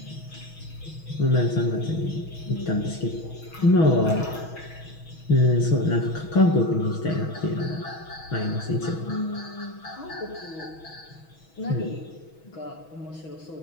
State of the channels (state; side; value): late; right; 6.2 ms